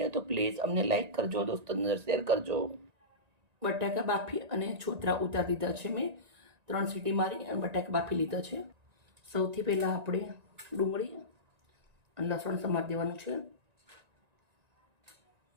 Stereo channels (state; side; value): late; left; 1.9 ms